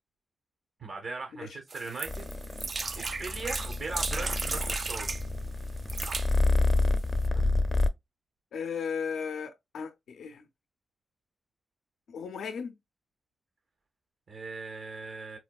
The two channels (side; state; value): both; normal; correlation 0.91